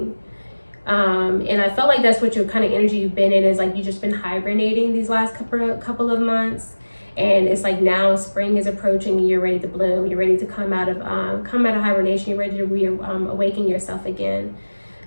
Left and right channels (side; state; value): both; inverted; correlation -1.00